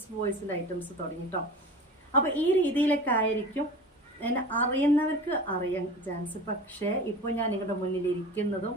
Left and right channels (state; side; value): normal; both; correlation 0.36